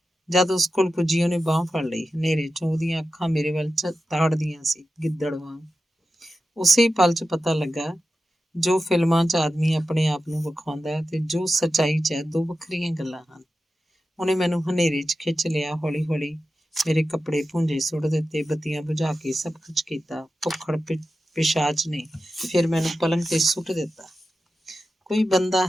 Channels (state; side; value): normal; both; correlation 0.92